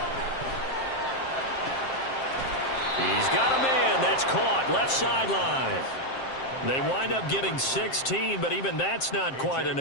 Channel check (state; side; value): late; right; 7.6 ms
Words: He's got a man. That's caught. Left sideline. They wind up getting 16, but even that's not quite